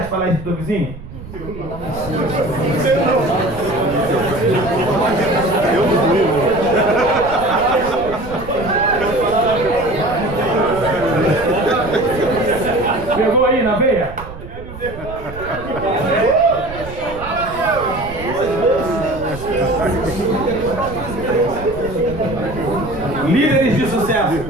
de falar isso para o teu vizinho? Pegou aí na veia? Líderes de sucesso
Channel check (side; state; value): right; noise; rumble, 13 dB below the sound